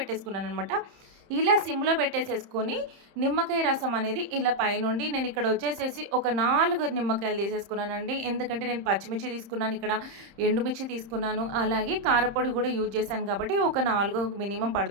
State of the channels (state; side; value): late; left; 30 ms